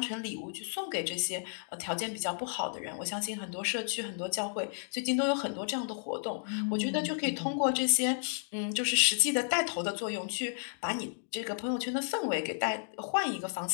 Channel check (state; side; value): silent; right; digital silence